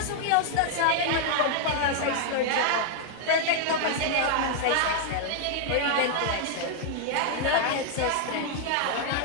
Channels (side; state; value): both; different; correlation 0.00